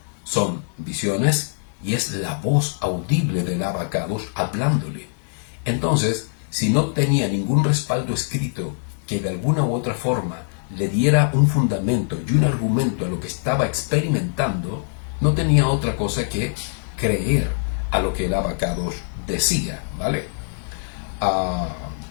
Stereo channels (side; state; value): right; silent; digital silence